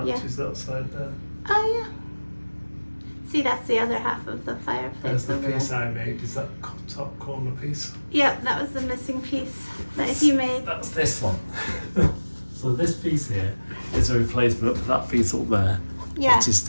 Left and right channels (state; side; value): inverted; both; correlation -1.00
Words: that side there. Oh yeah. See, that's the other half of the fireplace. There's the over piece there. I made. Is that top corner piece? Yep, that was the missing piece that you made. That's this one. So this piece here is a replacement for that piece up there. Yeah. Which is